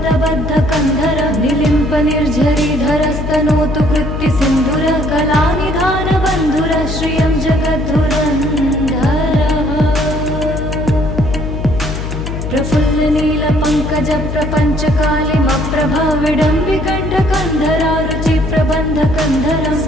निलिम्प निर्झरीधरस्तनोतु कृत्ति सिन्धुर कलानिधानबन्धुर श्रियं जगद्धुरन्धरः प्रफुल्लनीलपङ्कजप्रपञ्चकालिमप्रभा विडम्बिकण्ठकन्धरा रुचिप्रबन्धकन्धरं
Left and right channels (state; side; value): noise; left; hum, 5 dB below the sound